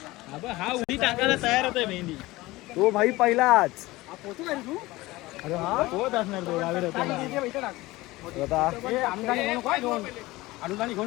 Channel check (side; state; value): right; quieter; 19.6 dB